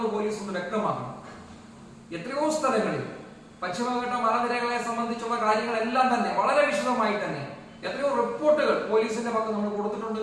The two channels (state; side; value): identical; both; correlation 1.00